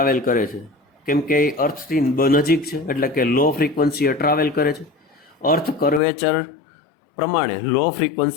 કરે છે, કેમ કે એ અર્થથી નજીક છે એટલે કે લો ફ્રીક્વન્સીએ ટ્રાવેલ કરે છે. અર્થ કર્વેચર પ્રમાણે લો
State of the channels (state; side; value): drops out; right; at 6.0 s